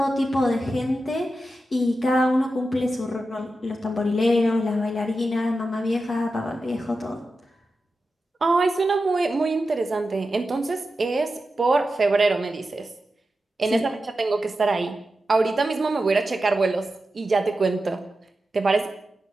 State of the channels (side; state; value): both; normal; correlation 0.91